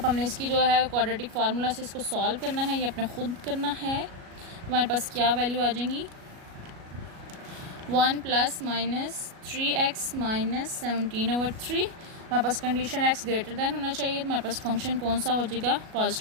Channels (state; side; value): late; left; 37 ms